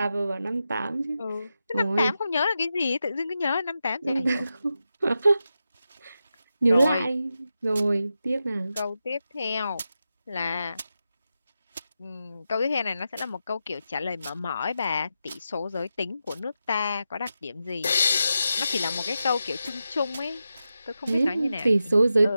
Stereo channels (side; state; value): both; inverted; correlation -0.89